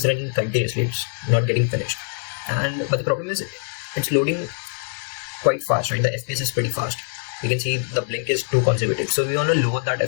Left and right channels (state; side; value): silent; right; 63 dB below the other